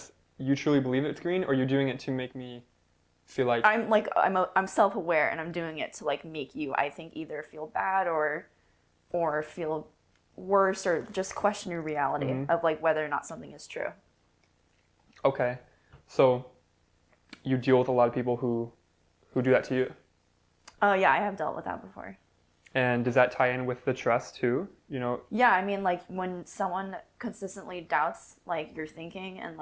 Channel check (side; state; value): both; identical; correlation 1.00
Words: you truly believe it's green, or you're doing it to make me feel like I'm self-aware, and I'm doing it to like make you, I think, either feel bad or feel worse, or just question your reality of like whether or not something is true. Okay. So you deal with a lot of people who do that to you. Oh yeah, I have dealt with that before. And does that tie in with the trust too? Yeah, I mean, like when someone consistently doubts like your thinking and